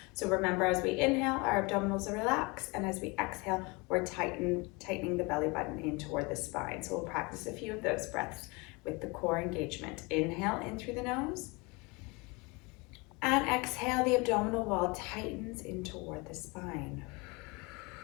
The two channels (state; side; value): quieter; right; 27.1 dB